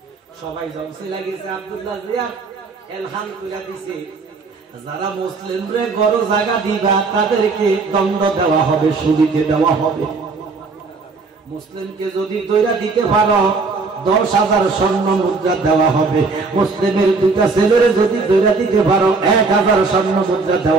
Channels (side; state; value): left; quieter; 4.1 dB